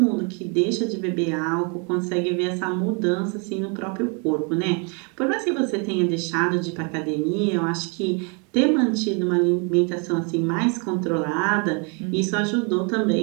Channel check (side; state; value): left; quieter; 35.1 dB